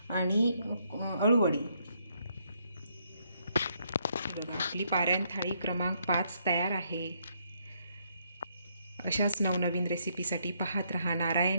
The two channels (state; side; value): inverted; both; correlation -0.73